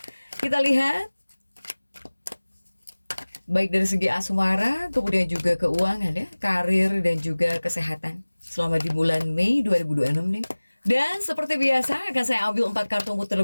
Kita lihat baik dari segi asmara, kemudian juga keuangan ya, karir dan juga kesehatan selama di bulan Mei 2026 nih. Dan seperti biasa akan saya ambil 4 kartu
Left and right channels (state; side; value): inverted; both; correlation -1.00